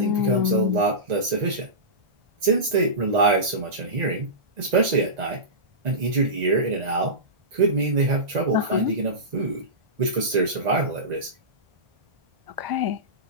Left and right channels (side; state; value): left; late; 1.9 ms